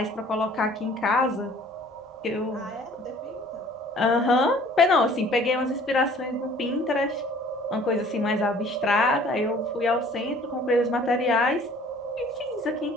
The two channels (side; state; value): both; normal; correlation 0.53